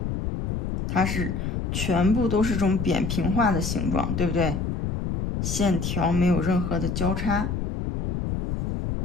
它是全部都是这种扁平化的形状，对不对？线条没有任何的交叉。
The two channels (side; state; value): left; noise; rumble, 2 dB below the sound